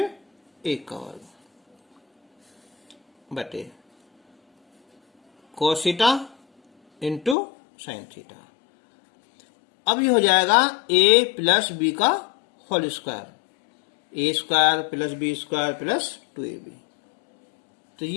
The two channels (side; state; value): right; drops out; at 7.4 s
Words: 1 का वर्ग बटे cos theta into sine theta. अब ये हो जाएगा a प्लस बी का whole square, A square plus B square plus 2ab। तो